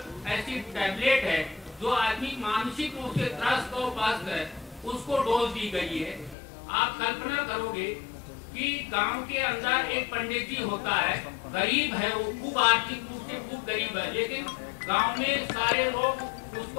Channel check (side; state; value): right; drops out; at 6.4 s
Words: ऐसी टैबलेट है जो आदमी मानसिक रूप से त्रस्त और पस्त है, उसको डोज दी गई है। आप कल्पना करोगे कि गांव के अंदर एक पंडित जी होता है, गरीब है, वो खूब आर्थिक रूप से खूब गरीब है, लेकिन गांव में सारे लोग